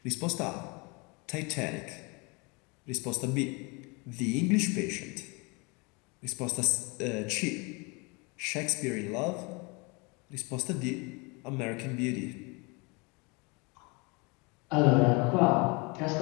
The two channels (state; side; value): quieter; right; 29.1 dB